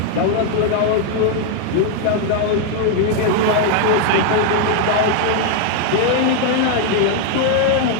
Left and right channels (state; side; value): different; both; correlation 0.00